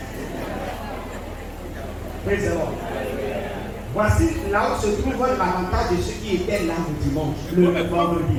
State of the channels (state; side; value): identical; both; correlation 1.00